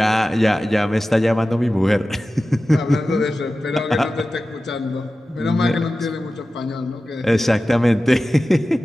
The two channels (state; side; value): normal; both; correlation 0.95